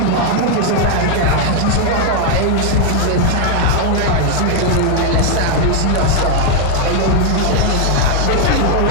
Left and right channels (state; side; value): different; both; correlation 0.00